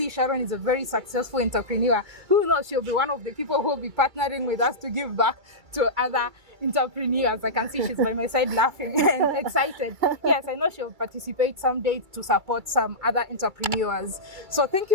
Sharon is a very successful entrepreneur. Who knows, she'll be one of the people who will be partnering with us to give back to other entrepreneurs. I can see she's by my side laughing and excited. Yes, I know she'll participate someday to support some other entrepreneurs. So thank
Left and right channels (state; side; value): late; left; 2.3 ms